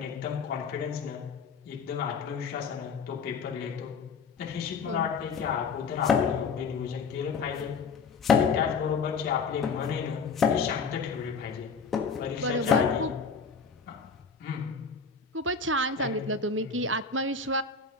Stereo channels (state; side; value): quieter; right; 5.1 dB